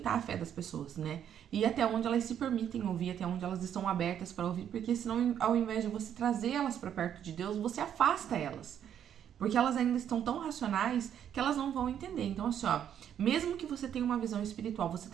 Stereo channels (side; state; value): left; quieter; 9.5 dB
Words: a fé das pessoas, né? E até onde elas se permitem ouvir, até onde elas estão abertas para ouvir, porque senão, ao invés de você trazer elas para perto de Deus, você afasta elas. Porque elas ainda estão tão racionais que elas não vão entender. Então, assim, ó, mesmo que você tenha uma visão espiritual, você